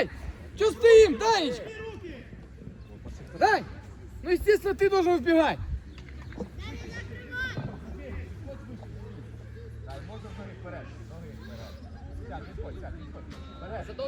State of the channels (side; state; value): both; identical; correlation 1.00